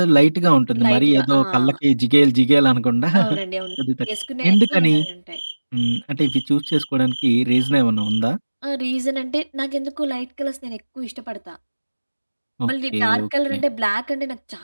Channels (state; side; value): inverted; both; correlation -1.00